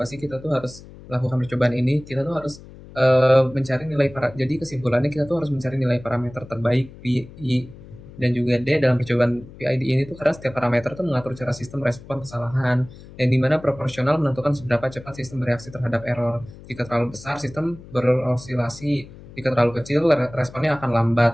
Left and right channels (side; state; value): left; noise; hum, 18 dB below the sound